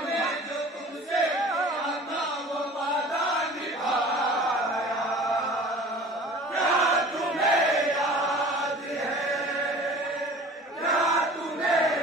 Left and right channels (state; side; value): normal; both; correlation 0.43